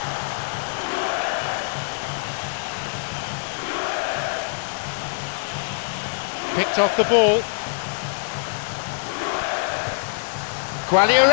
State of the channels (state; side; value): silent; right; digital silence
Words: Picked off the ball.